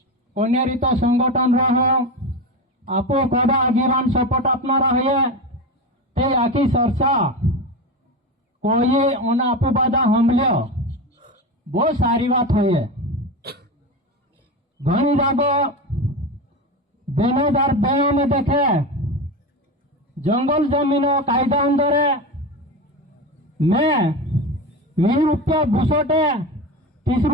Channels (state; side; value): normal; both; correlation 0.22